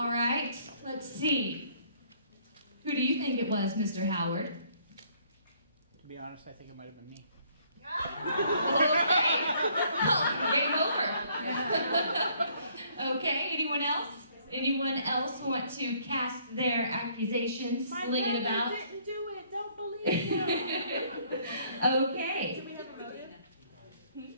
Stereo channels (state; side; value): inverted; both; correlation -0.63